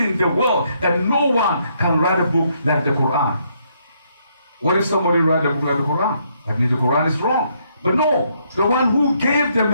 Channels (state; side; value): inverted; both; correlation -0.72